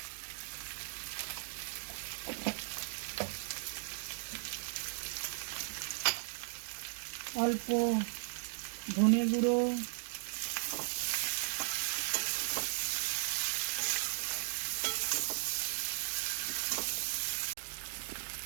অল্প ধনে গুঁড়ো,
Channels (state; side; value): silent; left; digital silence